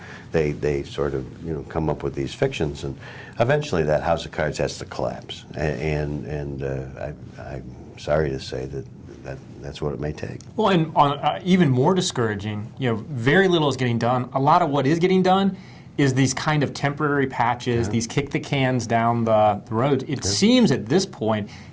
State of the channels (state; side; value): identical; both; correlation 1.00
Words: they sort of, come up with these fictions. And eventually that house of cards has to collapse. And I'm sorry to say that's what it may take. Well, and on, even more discouraging, very little is getting done. A lot of what is getting done is these kind of temporary patches, these kick the cans down the road. It seems at this point